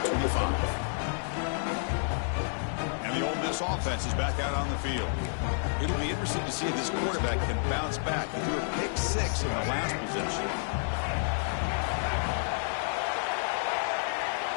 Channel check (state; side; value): silent; right; digital silence